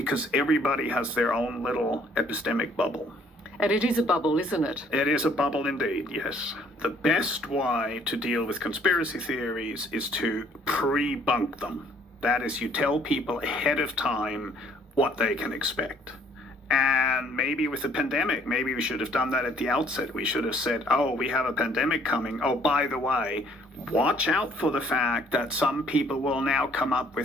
everybody has their own little epistemic bubble. And it is a bubble, isn't it? It is a bubble indeed, yes. The best way to deal with conspiracy theories is to pre-bunk them. That is, you tell people ahead of time what they can expect. And maybe with the pandemic, maybe we should have done that at the outset. We should have said, oh, we have a pandemic coming. Oh, by the way, watch out for the fact that some people will now come up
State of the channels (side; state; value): both; normal; correlation 0.61